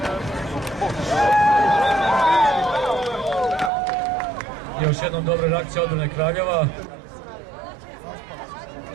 Još jednom dobra reakcija odbrane Kraljeva.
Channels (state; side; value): drops out; left; at 3.7 s